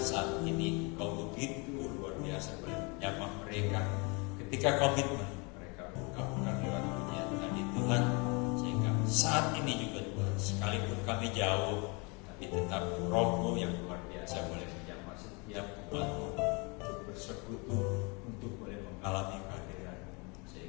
ini Engkau begitu luar biasa boleh menyapa mereka ketika komitmen mereka ungkapkan lewat pujian tadi Tuhan, sehingga saat ini juga Tuhan, sekalipun kami jauh, tapi tetap Roh-Mu yang luar biasa boleh menyapa setiap umat-Mu untuk bersekutu, untuk boleh mengalami kehadiran-Mu,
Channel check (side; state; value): right; quieter; 30.5 dB